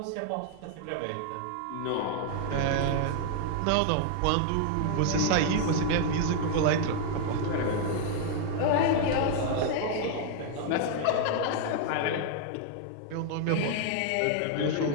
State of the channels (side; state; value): both; different; correlation 0.00